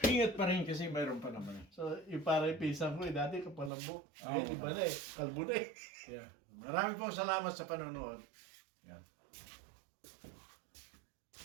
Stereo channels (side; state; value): left; drops out; at 3.7 s